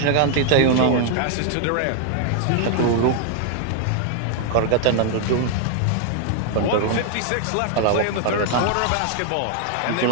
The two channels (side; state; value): both; different; correlation 0.00